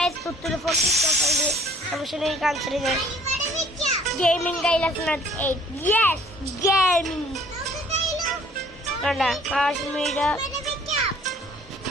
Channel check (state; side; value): normal; both; correlation 0.56